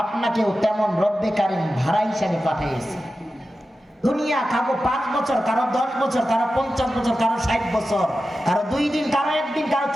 আপনাকেও তেমন রব্বে কারিম ভাড়া হিসাবে পাঠিয়েছে। দুনিয়া কারো 5 বছর, কারো 10 বছর, কারো 50 বছর, কারো 60 বছর, কারো 2 দিন, কারো 1 দিন, কারো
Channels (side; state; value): both; normal; correlation 0.93